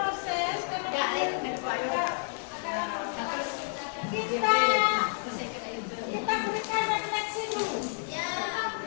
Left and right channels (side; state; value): right; silent; digital silence